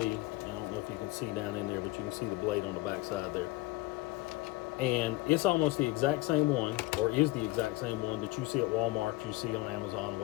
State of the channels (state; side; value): quieter; right; 19.6 dB